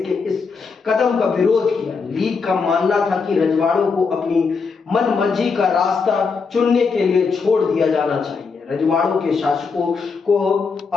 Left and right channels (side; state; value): right; quieter; 5.0 dB